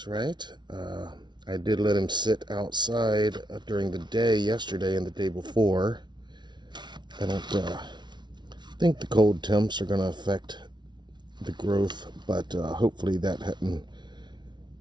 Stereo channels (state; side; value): late; left; 0.21 ms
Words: right. I did let him sit outside during the day yesterday and the day before. I don't think the cold temps are going to affect the growth, but hopefully that hadn't